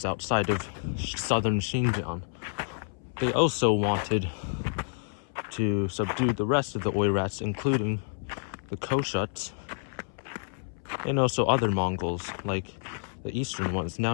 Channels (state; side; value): silent; right; 59 dB below the other